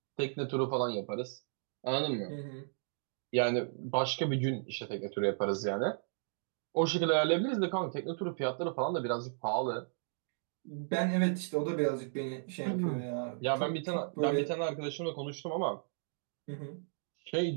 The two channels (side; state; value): left; silent; digital silence